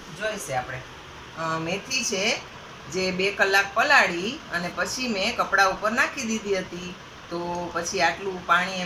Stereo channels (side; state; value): both; identical; correlation 1.00